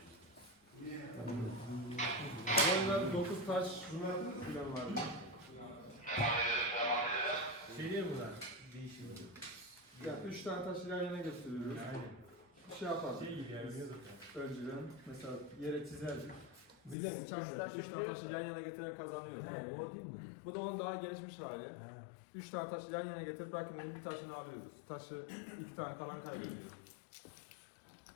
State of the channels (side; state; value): right; drops out; at 16.9 s